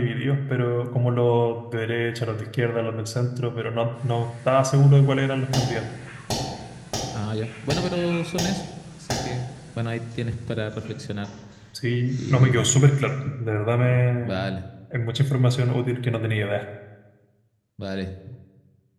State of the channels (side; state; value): both; identical; correlation 1.00